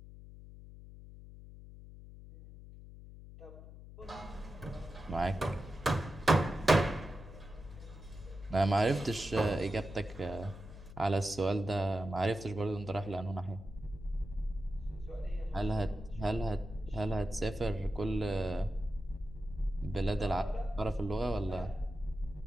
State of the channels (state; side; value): noise; left; hum, 15 dB below the sound